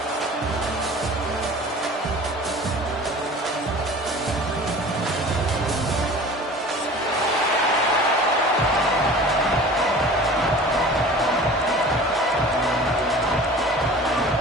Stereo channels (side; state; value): both; normal; correlation 0.42